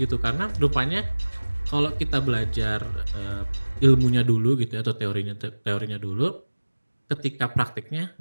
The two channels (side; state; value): both; inverted; correlation -1.00